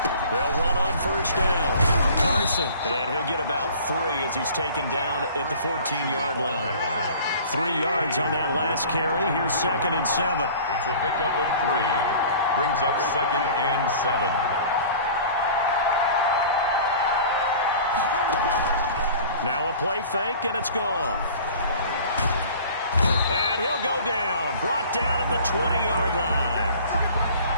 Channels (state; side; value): inverted; both; correlation -0.45